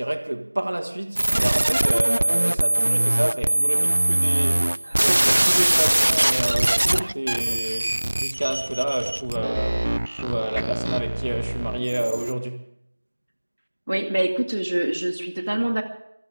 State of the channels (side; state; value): both; inverted; correlation -1.00